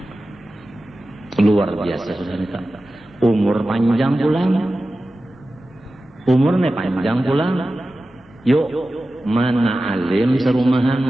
Luar biasa sudah nita. Umur panjang pulang. Umurnya panjang pulang. Yuk, mana alim serumahan,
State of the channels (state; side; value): normal; both; correlation 0.94